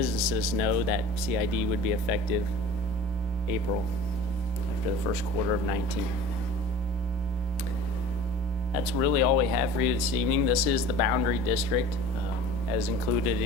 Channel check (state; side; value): normal; both; correlation 0.41